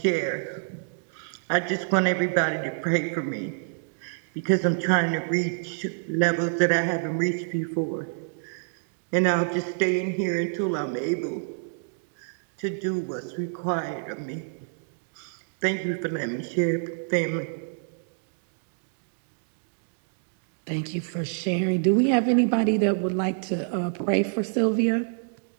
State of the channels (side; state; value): left; silent; digital silence